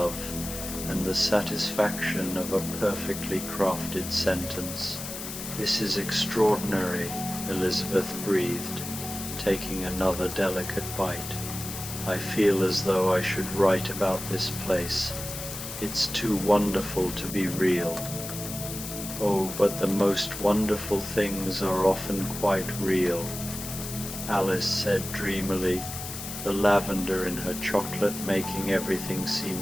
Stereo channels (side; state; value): left; noise; hiss, 8 dB below the sound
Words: and the satisfaction of a perfectly crafted sentence. "This is extraordinary," Elizabeth breathed, taking another delicate bite. "I feel as though I should write about this place. It's too wonderful to be real." "Oh, but the most wonderful things are often quite real," Alice said dreamily, the lavender in her chocolate making everything